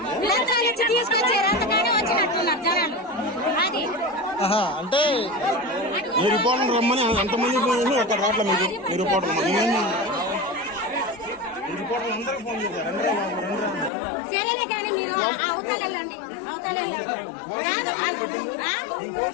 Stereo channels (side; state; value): right; drops out; at 13.9 s